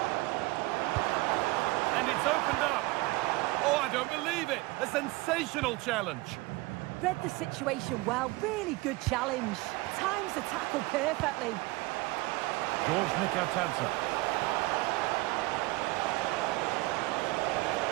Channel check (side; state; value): left; quieter; 22.0 dB